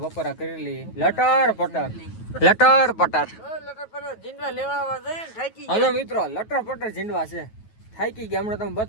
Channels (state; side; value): late; right; 9.3 ms